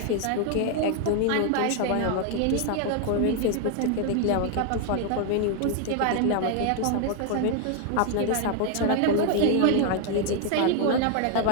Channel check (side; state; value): both; different; correlation 0.00